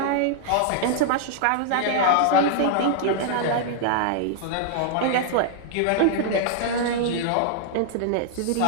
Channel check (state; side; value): different; both; correlation -0.01